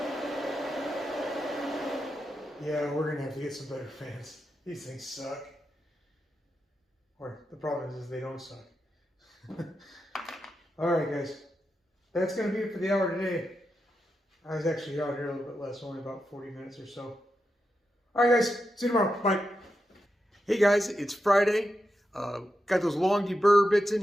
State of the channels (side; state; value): both; normal; correlation 0.87